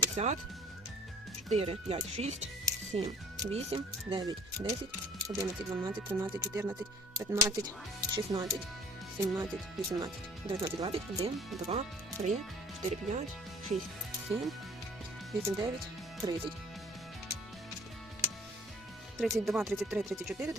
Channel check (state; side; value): normal; both; correlation 0.53